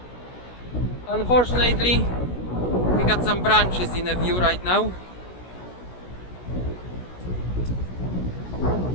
Unfortunately, we got some branches in the view right now.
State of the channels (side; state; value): right; late; 16 ms